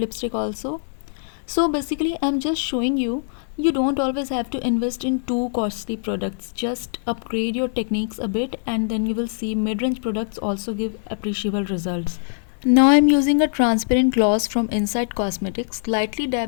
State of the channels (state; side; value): silent; right; digital silence